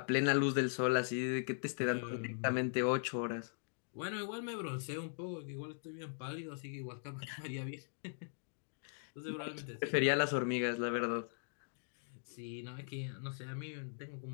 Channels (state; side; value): silent; right; digital silence